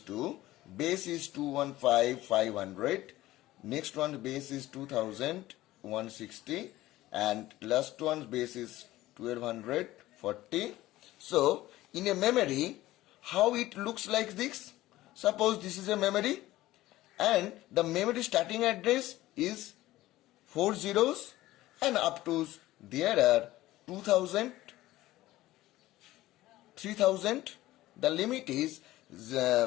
base is 215,500, next one base is 2,160, and last one base is 1,240. So, in a memory, how it looks like this? Suppose this is a memory, and the memory starting address is 4 zeros, and up to there are 2,000, 3,000. The limit is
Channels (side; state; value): right; quieter; 16.4 dB